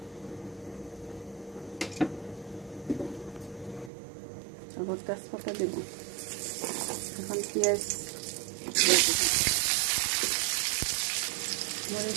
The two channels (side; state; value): left; drops out; at 3.9 s